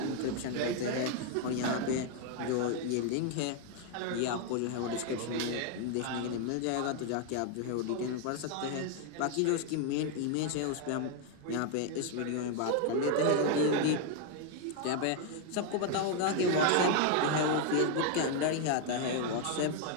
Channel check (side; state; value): both; different; correlation 0.00